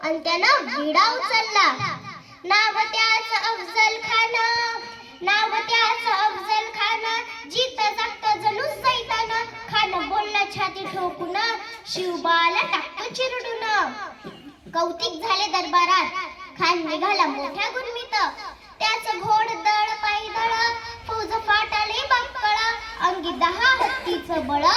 आणि त्यानं विडा उचलला. नाव त्याच अफजल खान, नाव त्याच अफजल खान. जीत जागत जणू सैतान. खान बोलला छाती ठोकून, शिवबाला टाकतो चिरडून. कौतिक झाले दरबारात, खान निघाला मोठ्या गुरमीत. त्याच घोडदळ पायदळ, फौज फाटाले बक्कळ. अंगी 10 हत्तीचं बळ,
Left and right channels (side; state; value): both; identical; correlation 1.00